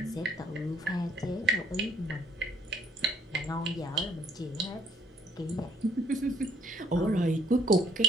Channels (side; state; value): both; normal; correlation 0.64